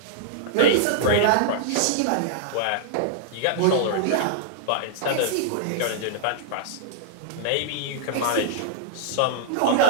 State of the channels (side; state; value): both; different; correlation -0.02